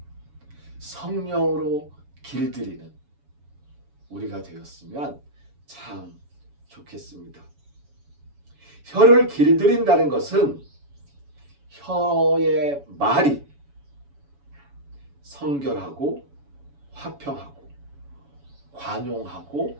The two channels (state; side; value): late; left; 7.1 ms